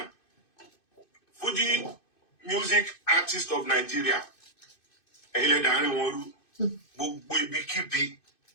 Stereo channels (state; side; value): late; right; 2.6 ms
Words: Fuji Music Artist of Nigeria. Ẹ̀yin lẹ dàárín wọn rú. Gbogbo ibikíbi